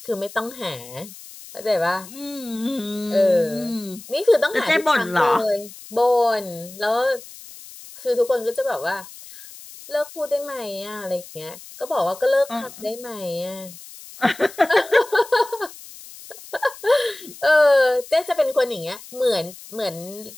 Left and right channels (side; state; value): left; noise; hiss, 17 dB below the sound